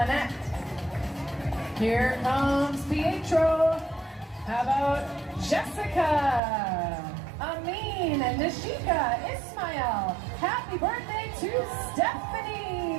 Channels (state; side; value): drops out; left; at 6.4 s